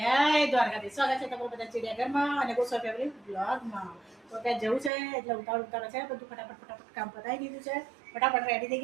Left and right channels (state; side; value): drops out; left; at 4.9 s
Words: દ્વારકાધીશ. સ્વાગત છે તમારું બધા ચિડિયાઘરમાં અને ગોસ્વામી ફેમિલી બ્લોગમાં. તો ત્યાં જવું છે એટલે ઉતાવળ છે, બધું ફટાફટ કામ પતાવી દીધું છે, ફટાફટ રેડી થઈ